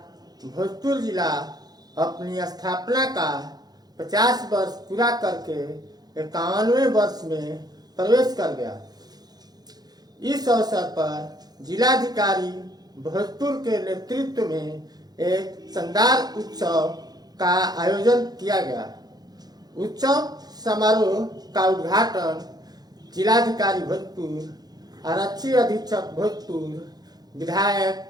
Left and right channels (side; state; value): left; late; 0.19 ms